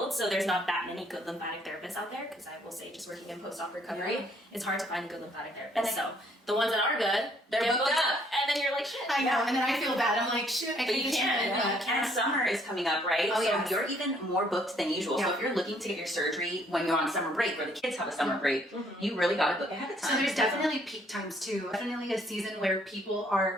so there's not that many good lymphatic therapists out there, because I will say just working in post-op recovery, it's hard to find a good lymphatic therapist. So the ones that are good, They're get booked up. and then you're like, shit. I know, and then I feel bad. I'm like, shit, I But can't you do can't. it. And summer is coming up, right? Oh, so yes. you're even more booked than usual. So Yeah. if you're looking to get your surgery when you're on summer break or the kids have a summer break, you really got to book ahead of time. So there's definitely peak times too. Definitely a season where people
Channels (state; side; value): normal; both; correlation 0.65